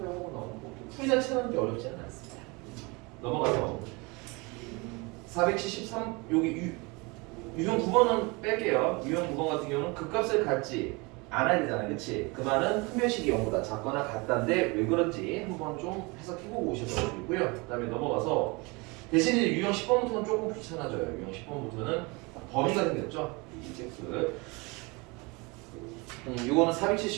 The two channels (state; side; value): quieter; left; 27.1 dB